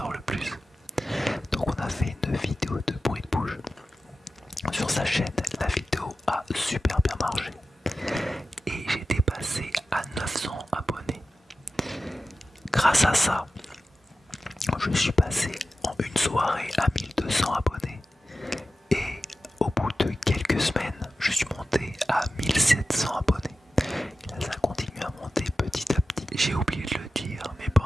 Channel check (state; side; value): normal; both; correlation 0.93